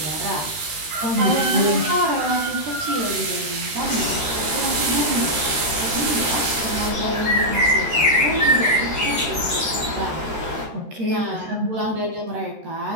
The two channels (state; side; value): late; left; 13 ms